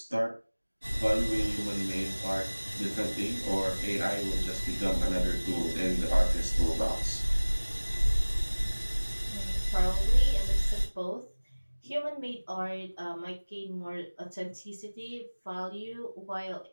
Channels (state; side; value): inverted; both; correlation -1.00